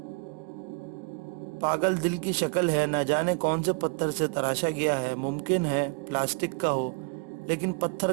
پاگل دل کی شکل ہے، نہ جانے کون سے پتھر سے تراشا گیا ہے، ممکن ہے پلاسٹک کا ہو، لیکن پتھر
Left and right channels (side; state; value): left; quieter; 35.7 dB